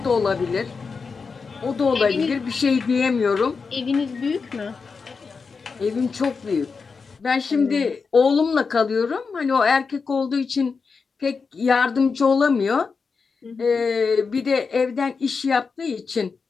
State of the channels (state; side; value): quieter; right; 5.0 dB